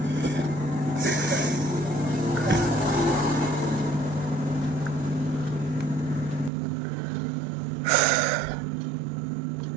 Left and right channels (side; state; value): left; drops out; at 6.5 s